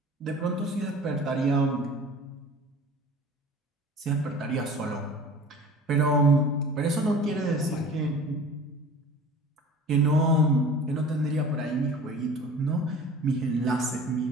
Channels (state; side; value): normal; both; correlation 0.42